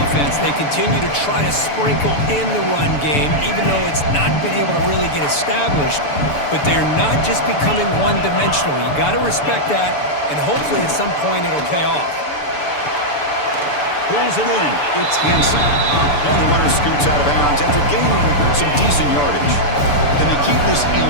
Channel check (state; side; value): late; right; 6.9 ms